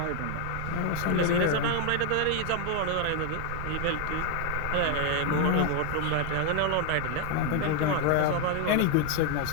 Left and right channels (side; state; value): both; different; correlation 0.00